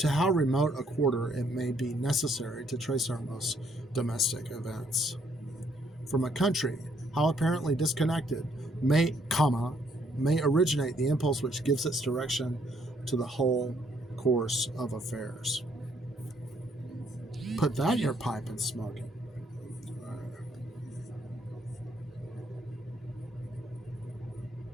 how remote a quarter it may be necessary to trace our most domestic events. From a country, how apparently disconnected, may originate the impulse which gives its direction to the whole course of affairs. Put that in your pipe and smoke it.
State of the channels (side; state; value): both; normal; correlation 0.69